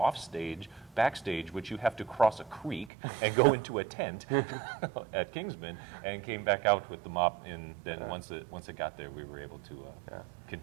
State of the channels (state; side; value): drops out; left; at 2.9 s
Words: stage, backstage, which you have to cross a creek and go into a tent at Kingsman, and came back out with the mop. And then once it got there, we were able to